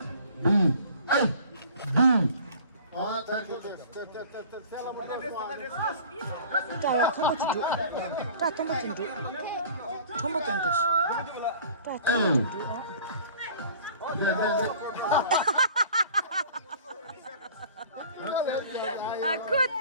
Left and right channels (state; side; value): inverted; both; correlation -0.46